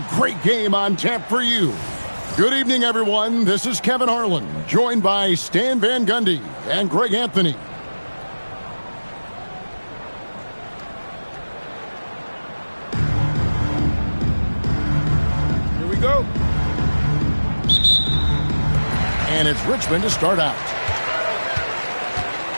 great game on tap for you. Good evening, everyone. This is Kevin Harlan, joined by Stan Van Gundy and Greg Anthony. Here we go. And it's Richmond to start out.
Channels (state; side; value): inverted; both; correlation -1.00